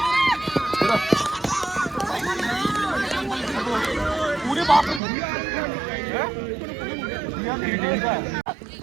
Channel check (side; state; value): left; drops out; at 5.0 s